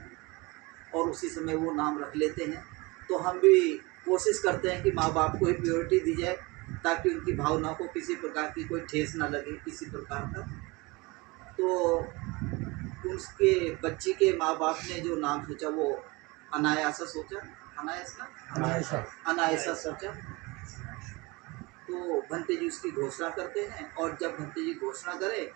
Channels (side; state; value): left; quieter; 24.7 dB